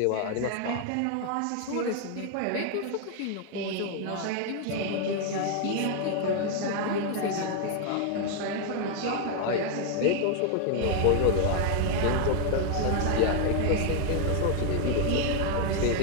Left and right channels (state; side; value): different; both; correlation 0.00